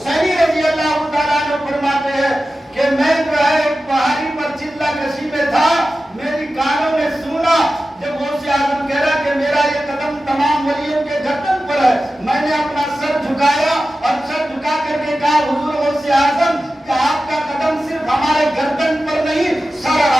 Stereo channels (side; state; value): both; normal; correlation 0.94